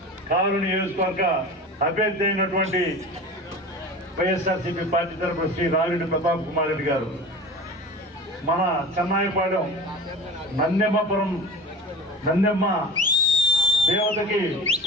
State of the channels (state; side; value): normal; both; correlation 0.35